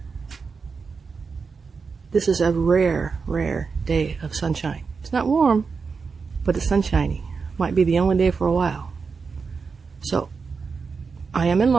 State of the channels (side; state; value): left; quieter; 5.1 dB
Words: This is a rare day of sunshine. It's not warm, but it's sunshiny. Might be the only day for a while. So, I am in